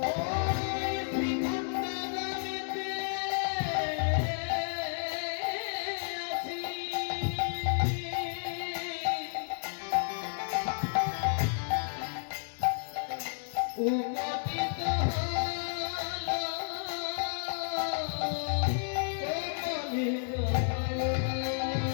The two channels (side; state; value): right; silent; 57 dB below the other